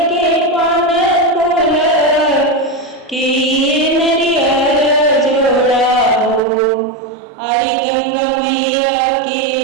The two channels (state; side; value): drops out; left; at 6.4 s